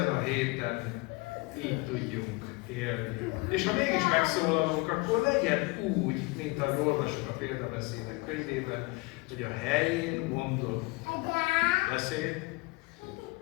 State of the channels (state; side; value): quieter; right; 25.5 dB